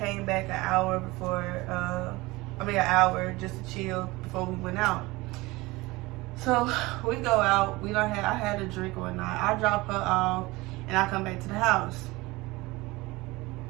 back an hour just to chill before we went out. So we go out. I had a drink one night. I drop her off, and I come back to the house.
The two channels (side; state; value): left; quieter; 21.5 dB